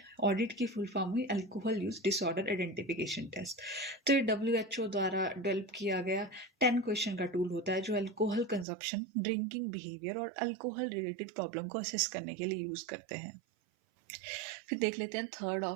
ऑडिट की फुल फॉर्म हुई alcohol use disorder identification test. तो ये WHO द्वारा डेवलप किया गया 10 क्वेश्चन का टूल होता है जो अल्कोहल कंजप्शन, ड्रिंकिंग बिहेवियर और अल्कोहल रिलेटेड प्रॉब्लम को असेस करने के लिए यूज करते हैं। फिर देख लेते हैं थर्ड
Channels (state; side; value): drops out; left; at 8.7 s